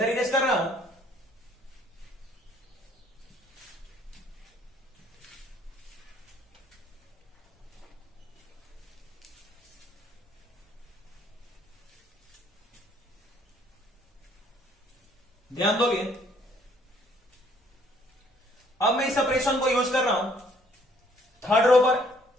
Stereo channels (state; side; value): normal; both; correlation 0.63